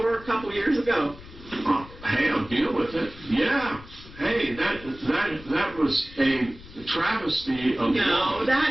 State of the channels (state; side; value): noise; left; rumble, 18 dB below the sound